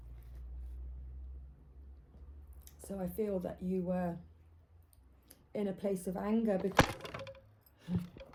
So I feel that you were in a place of anger because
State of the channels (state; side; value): identical; both; correlation 1.00